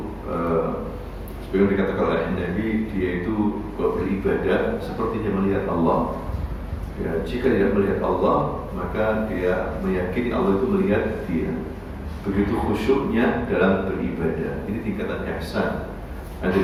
seperti dikatakan oleh Nabi, dia itu beribadah seperti dia melihat Allah. Ya, jika tidak melihat Allah, maka dia meyakini Allah itu melihat dia. Begitu khusyuknya dalam beribadah. Ini tingkatan ihsan.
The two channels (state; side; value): identical; both; correlation 1.00